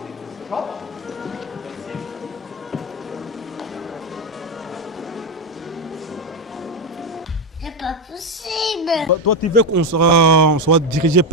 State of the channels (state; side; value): normal; both; correlation 0.09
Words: C'est pas possible. Toi, tu veux qu'on soit dirigé